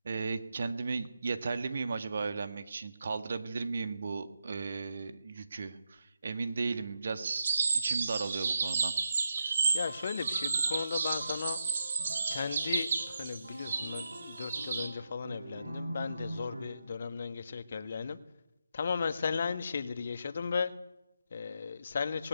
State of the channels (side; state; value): both; inverted; correlation -0.84